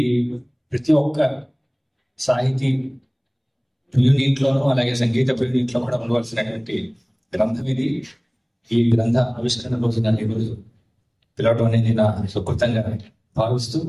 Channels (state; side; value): identical; both; correlation 1.00